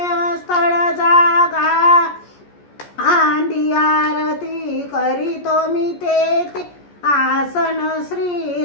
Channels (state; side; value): late; right; 14 ms